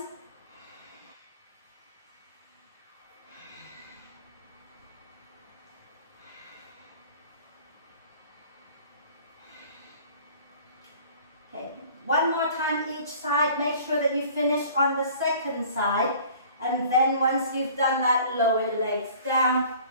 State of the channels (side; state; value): both; inverted; correlation -0.48